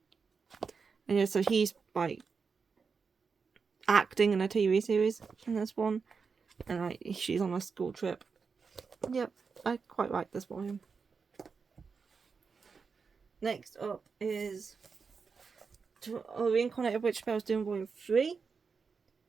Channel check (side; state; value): left; quieter; 5.3 dB